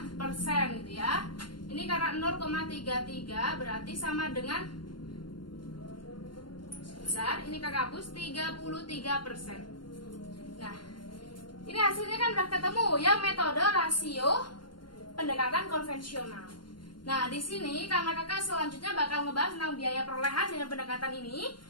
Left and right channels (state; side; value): late; right; 0.72 ms